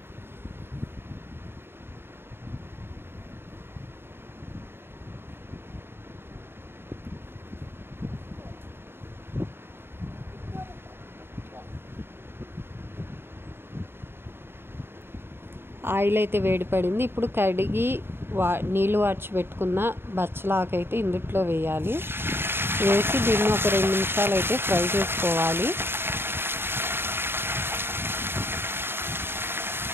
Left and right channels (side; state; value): left; late; 0.11 ms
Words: ఆయిల్ అయితే వేడి పడింది. ఇప్పుడు కడిగి నీళ్ళు వార్చి పెట్టుకున్న బచ్చలాకు అయితే ఇందులో వేయాలి. వేసి దీన్ని ఒక 2 నిమిషాలు అయితే ఫ్రై చేసుకోవాలి.